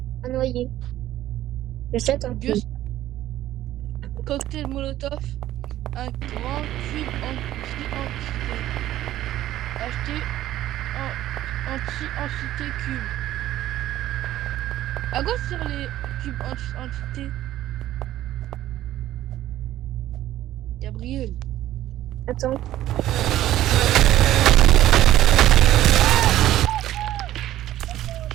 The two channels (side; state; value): left; quieter; 13.6 dB